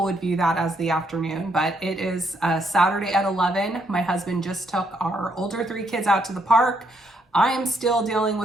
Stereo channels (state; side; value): normal; both; correlation 0.73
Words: would view that as the afternoon, but it is Saturday at 11. My husband just took our older 3 kids out to the park. I am still dealing